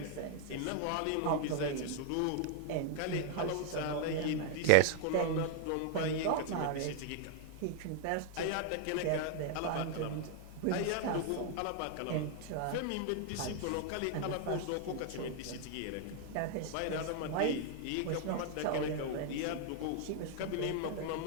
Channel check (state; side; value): different; both; correlation 0.00